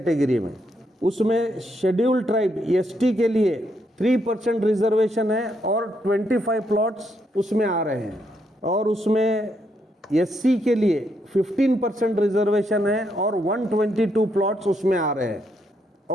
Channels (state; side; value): normal; both; correlation 0.76